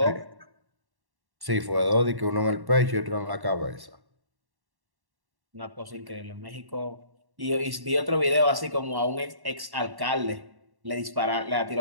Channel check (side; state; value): left; late; 1.1 ms